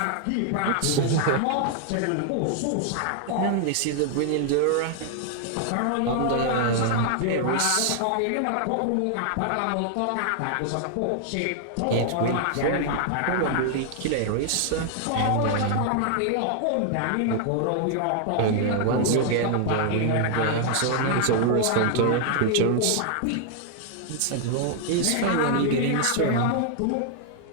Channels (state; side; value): different; both; correlation 0.00